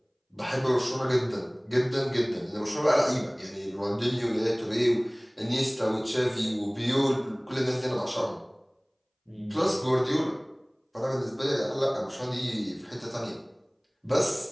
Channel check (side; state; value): both; identical; correlation 1.00